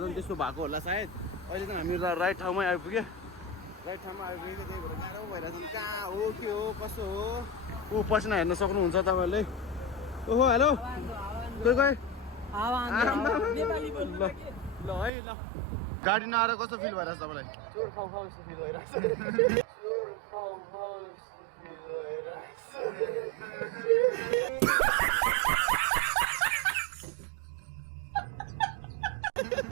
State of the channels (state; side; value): drops out; left; at 15.1 s